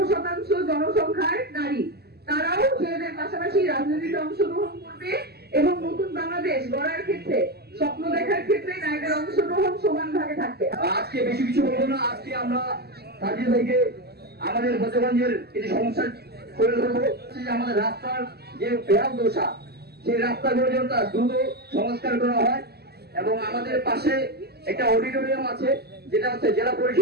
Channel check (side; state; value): left; late; 0.46 ms